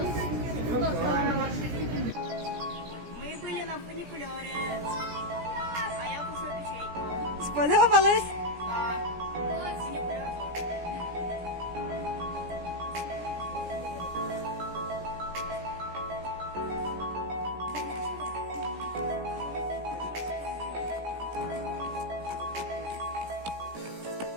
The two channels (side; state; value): left; late; 17 ms